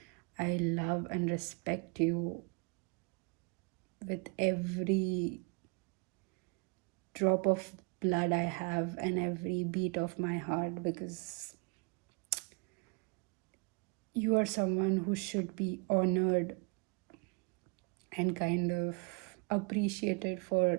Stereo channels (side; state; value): left; quieter; 31.7 dB